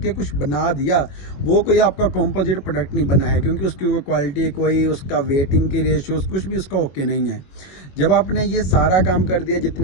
कुछ बना दिया, वो कोई आपका कॉम्पोजिट प्रोडक्ट नहीं बना है, क्योंकि उसकी कोई क्वालिटी, कोई उसका वेटिंग की रेशियोज कुछ भी उसका ओके नहीं है। जब आपने ये सारा काम कर दिया,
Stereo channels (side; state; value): right; late; 21 ms